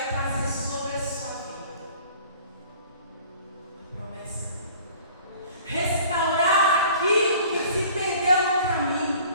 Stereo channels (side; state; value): both; inverted; correlation -0.50